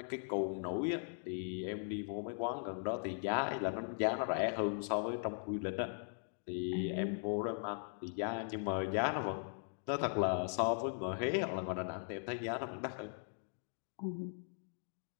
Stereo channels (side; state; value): right; silent; digital silence